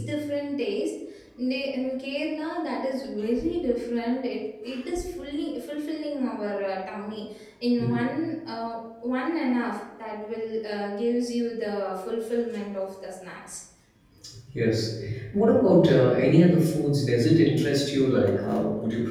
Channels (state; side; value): identical; both; correlation 1.00